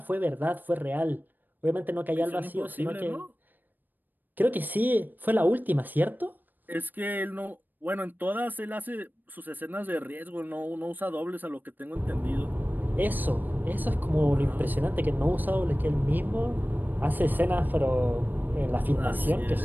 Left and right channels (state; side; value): late; left; 0.090 ms